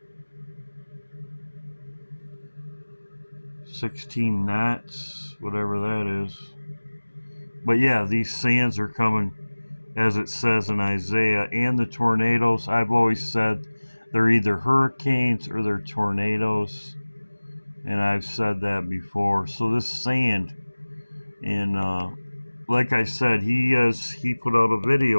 $16 knots, whatever that is. But yeah, these sands are coming, as it says in Isaiah, and the tornadoes. I've always said they're either hurricanes or they're tornadoes, and I've said that before. So this sand, and like I said, he put out a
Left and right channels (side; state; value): both; inverted; correlation -1.00